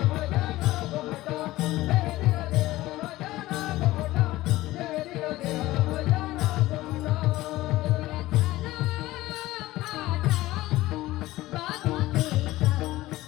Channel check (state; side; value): quieter; right; 17.3 dB